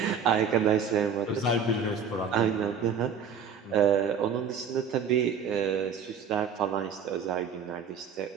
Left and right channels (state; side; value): quieter; left; 6.3 dB